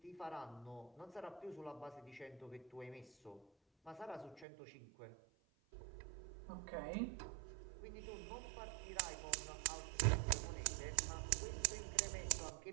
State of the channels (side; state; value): left; drops out; at 4.5 s